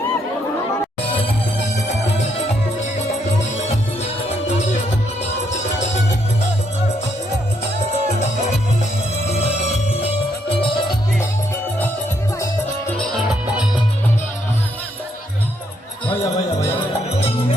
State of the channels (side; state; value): both; normal; correlation 0.74